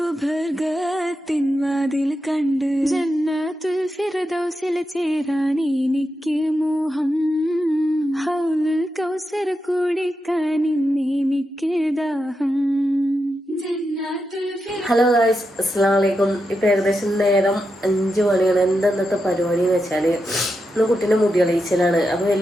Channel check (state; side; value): normal; both; correlation 0.87